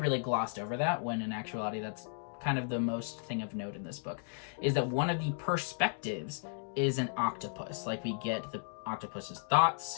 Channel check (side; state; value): right; silent; digital silence